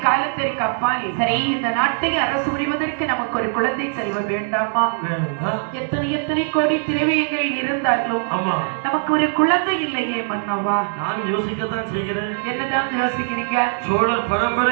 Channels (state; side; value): silent; left; digital silence